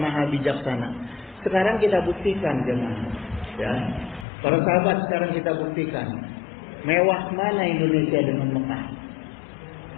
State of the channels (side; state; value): right; drops out; at 4.2 s